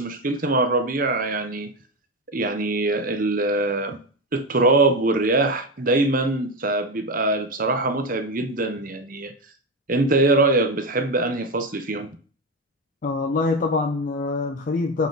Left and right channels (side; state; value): both; normal; correlation 0.15